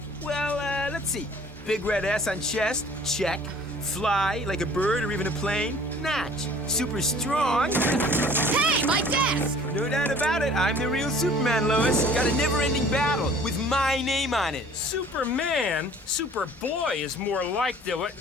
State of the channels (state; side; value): normal; both; correlation 0.51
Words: Well, let's see. Big red S on chest, check. Fly like a bird or even a plane, notch. Super strong. Hey, my desk! No doubt about it, I'm the real Superman, Lois. Got a never-ending battle with my name on it. Superman? Superboy is more like the...